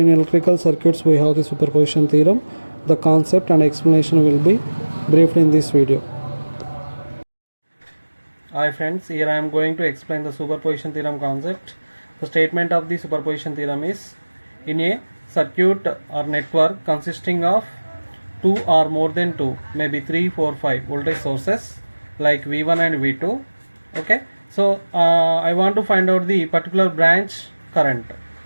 electrical circuits we have the superposition theorem. The concept and explanation will be briefed in this video. Hi friends, here I am going to explain the superposition theorem concept. The statement of the superposition theorem is: in a circuit or network consisting of two or more than two, maybe 3, 4, 5 voltage sources like V1 and V2. Okay, so I want to find out the particular branch current.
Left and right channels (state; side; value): inverted; both; correlation -1.00